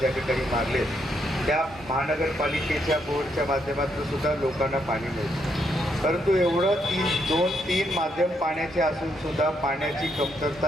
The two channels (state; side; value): normal; both; correlation 0.76